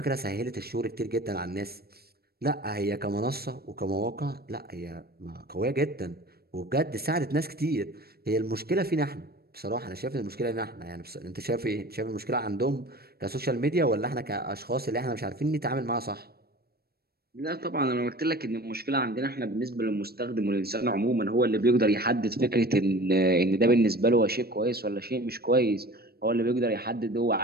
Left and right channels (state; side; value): late; left; 0.45 ms